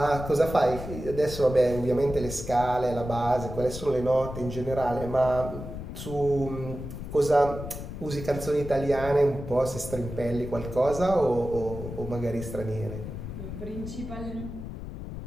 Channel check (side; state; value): left; noise; rumble, 9 dB below the sound